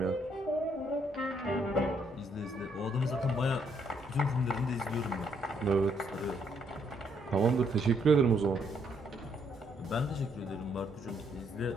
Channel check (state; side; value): normal; both; correlation 0.71